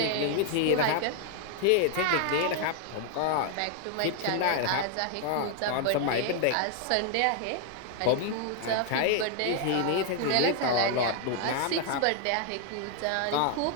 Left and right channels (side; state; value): both; different; correlation 0.00